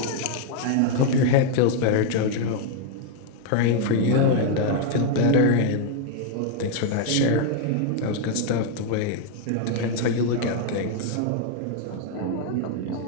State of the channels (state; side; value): different; both; correlation 0.00